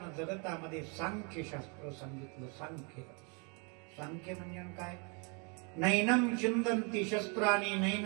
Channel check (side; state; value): left; quieter; 34.5 dB